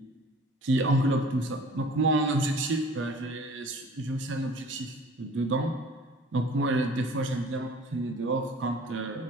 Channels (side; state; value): both; normal; correlation 0.48